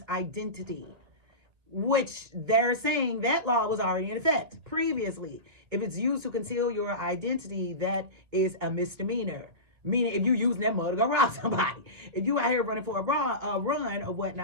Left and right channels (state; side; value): late; left; 2.2 ms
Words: identity, which they're saying that law was already in effect previously. If it's used to conceal your identity, that is a misdemeanor. Meaning if you're using that mud to go rob somebody. If you out here running for a run or